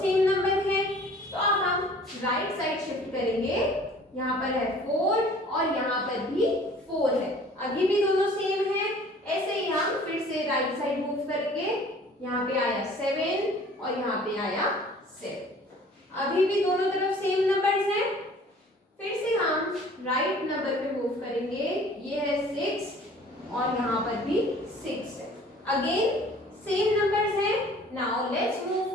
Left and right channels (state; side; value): normal; both; correlation 0.50